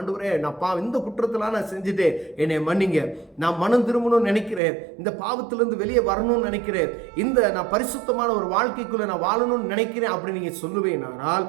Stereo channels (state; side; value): drops out; left; at 4.6 s